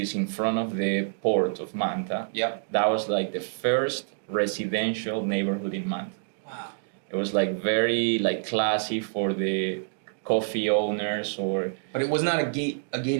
in front of the port of Manta, that was like the first residential neighborhood in Manta. Wow. It was like very like classy for the coffee owners But it was not a gated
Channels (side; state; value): left; silent; digital silence